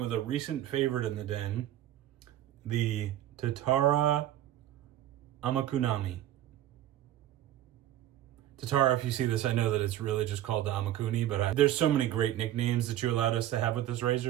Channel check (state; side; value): quieter; left; 12.8 dB